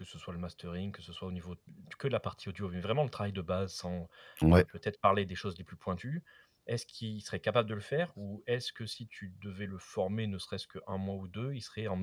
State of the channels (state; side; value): identical; both; correlation 1.00